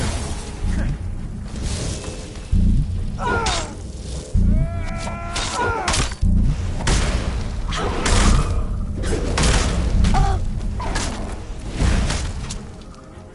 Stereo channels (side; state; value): both; identical; correlation 1.00